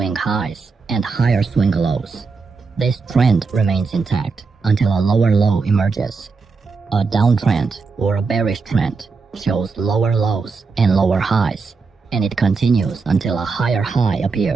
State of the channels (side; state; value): left; quieter; 4.6 dB